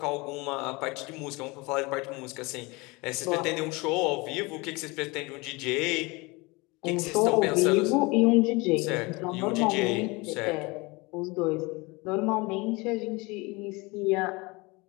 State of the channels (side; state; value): right; quieter; 25.4 dB